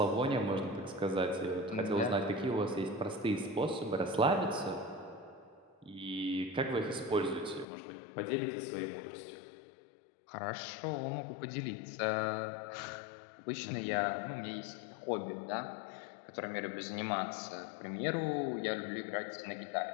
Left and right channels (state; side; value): drops out; right; at 7.7 s